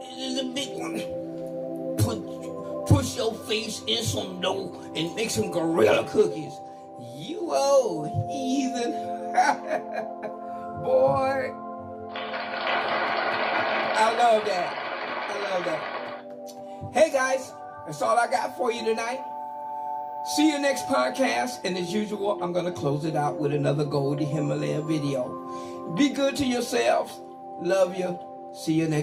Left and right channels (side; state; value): both; identical; correlation 1.00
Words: is a big one. Push your face in some dough and make some gorilla cookies. You old heathen. Boy. I love that. I love that. Hey guys, that's all I got for you tonight. See you next podcast. And as usual, I'm going to close it out with another Goldie Himalaya video. Be good to yourselves. Love you. See you